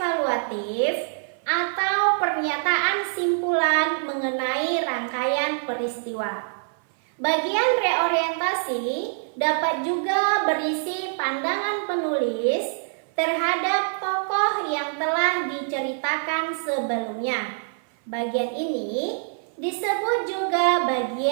atau pernyataan simpulan mengenai rangkaian peristiwa. Bagian reorientasi dapat juga berisi pandangan penulis terhadap tokoh yang telah diceritakan sebelumnya. Bagian ini disebut juga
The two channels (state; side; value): silent; left; 57 dB below the other